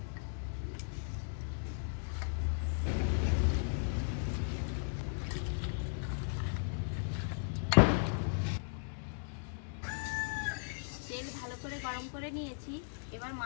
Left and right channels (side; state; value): right; silent; digital silence